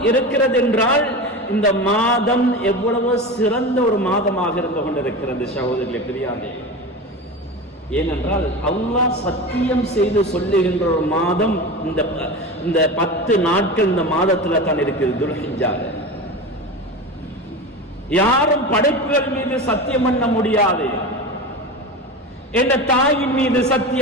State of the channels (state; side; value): normal; both; correlation 0.27